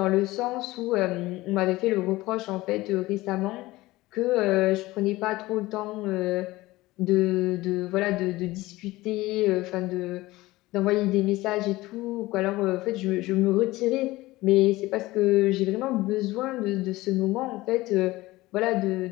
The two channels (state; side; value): quieter; right; 18.9 dB